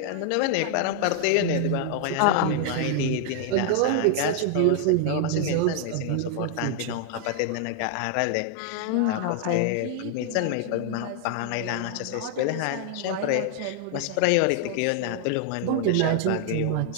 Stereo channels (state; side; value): different; both; correlation 0.00